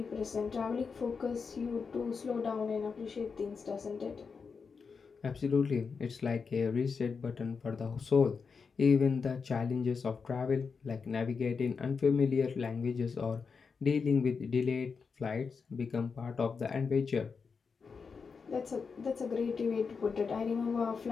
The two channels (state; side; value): quieter; right; 5.4 dB